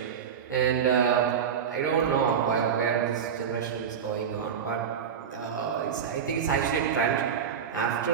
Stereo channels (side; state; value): left; quieter; 7.5 dB